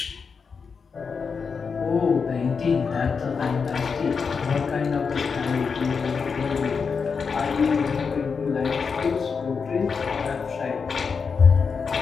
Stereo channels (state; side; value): quieter; right; 5.5 dB